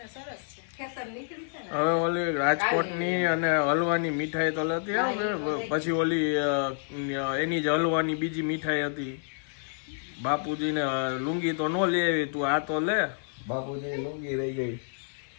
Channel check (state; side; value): silent; right; 56 dB below the other